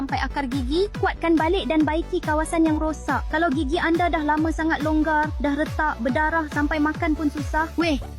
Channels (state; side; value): identical; both; correlation 1.00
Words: akar gigi, kuatkan balik dan baiki kawasan yang rosak. Kalau gigi anda dah lama sangat longgar, dah retak, berdarah sampai makan pun susah, weh,